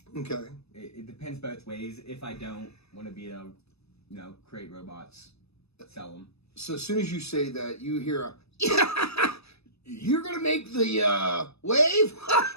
Okay. It depends both ways. If I don't want to be create robots, sell them. So as soon as you say that, you hear you're gonna make the wave.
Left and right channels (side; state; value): right; late; 0.79 ms